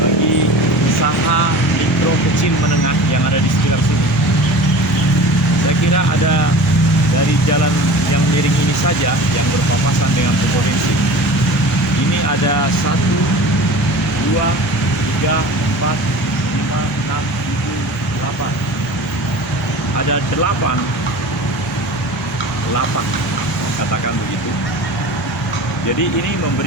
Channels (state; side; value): normal; both; correlation 0.38